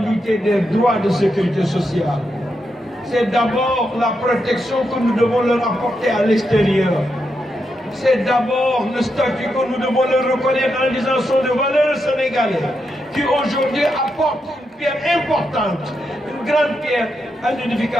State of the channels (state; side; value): normal; both; correlation 0.84